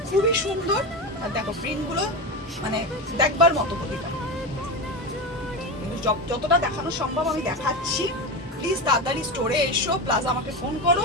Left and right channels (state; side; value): normal; both; correlation 0.18